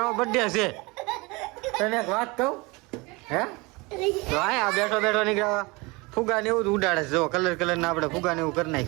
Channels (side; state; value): left; quieter; 25.5 dB